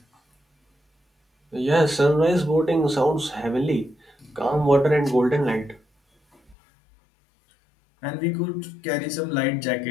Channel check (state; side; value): drops out; right; at 6.6 s